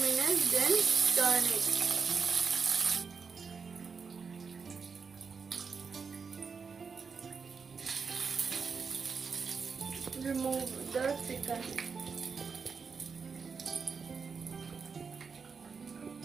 minutes, then turn it. Remove the chicken.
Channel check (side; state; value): left; quieter; 5.5 dB